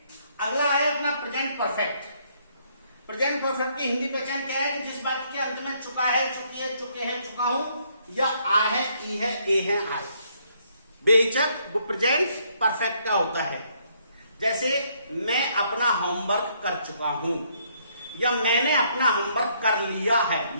अगला है अपना प्रेजेंट परफेक्ट। प्रेजेंट परफेक्ट की हिंदी पहचान क्या है? जिस वाक्य के अंत में चुका है, चुकी है, चुके हैं, चुका हूं, या आ है, ई है, ए है, आए, बेहिचक वो प्रेजेंट परफेक्ट का होता है। जैसे मैं अपना होमवर्क कर चुका हूं, या मैंने अपना होमवर्क कर लिया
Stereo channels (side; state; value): both; inverted; correlation -0.69